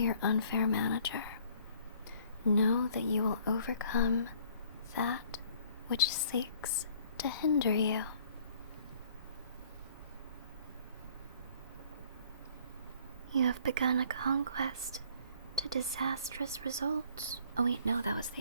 unfair manager. Know that you will overcome that which seeks to hinder you. You have begun a conquest to disastrous results. Oh wait, no, that was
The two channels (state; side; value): inverted; both; correlation -0.57